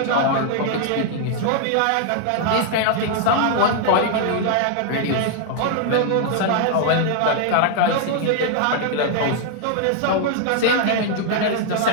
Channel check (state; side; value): different; both; correlation 0.00